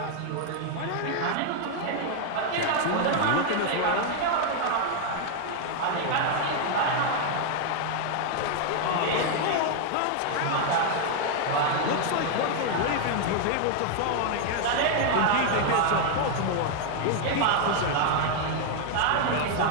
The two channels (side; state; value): both; different; correlation 0.00